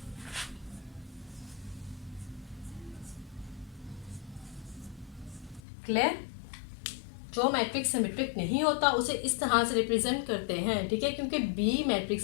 क्लियर। जो मैट्रिक्स सिमेट्रिक नहीं होता उसे इस तरह से रिप्रेजेंट करते हैं, ठीक है, क्योंकि बी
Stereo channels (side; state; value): right; drops out; at 5.6 s